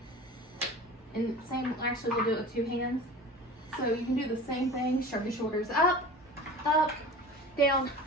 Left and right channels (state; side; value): normal; both; correlation 0.38